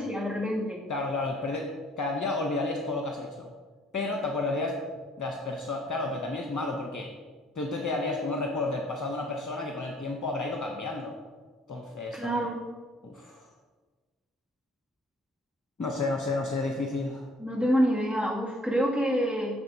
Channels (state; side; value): normal; both; correlation 0.59